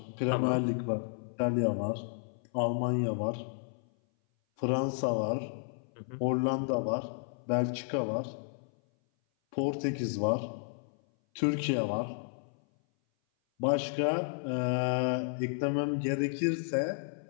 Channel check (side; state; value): right; silent; 56 dB below the other